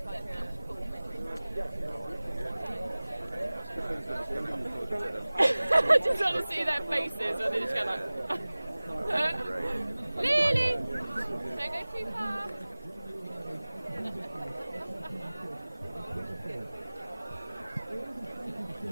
I just want to see their faces when they just go like, Lily! Don't go too far.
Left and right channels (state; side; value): inverted; both; correlation -0.99